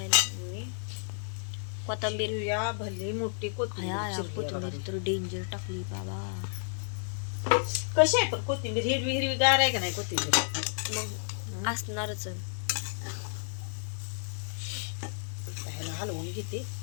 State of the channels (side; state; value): right; silent; 57 dB below the other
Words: मी कोथिंबीर चिरूया भले मोठी कोथिंबीर तर डेंजर टाकली बाबा कशी आहे पण कोथिंबीर हिरवी हिरवी गार आहे का नाही कोथिंबीर मग असणारच ह्याला हलवून घेते